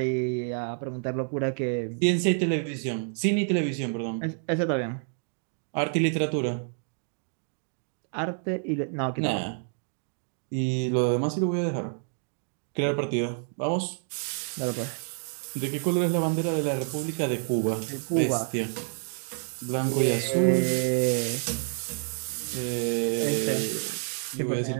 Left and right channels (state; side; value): silent; left; 59 dB below the other